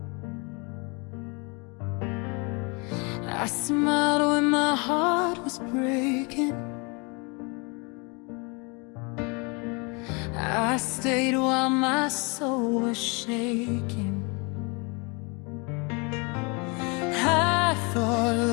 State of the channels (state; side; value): quieter; right; 31.0 dB